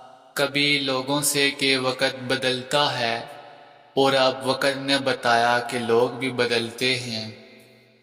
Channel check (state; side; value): identical; both; correlation 1.00